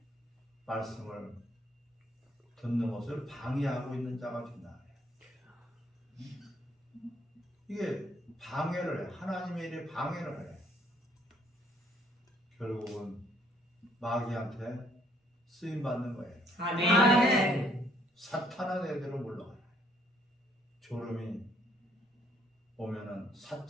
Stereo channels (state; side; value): normal; both; correlation 0.66